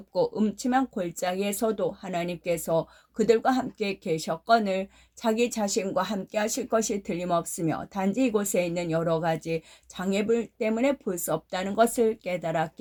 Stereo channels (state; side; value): identical; both; correlation 1.00